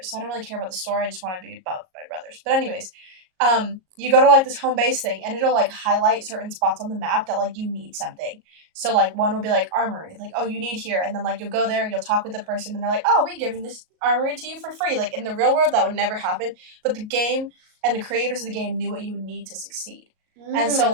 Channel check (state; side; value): late; left; 38 ms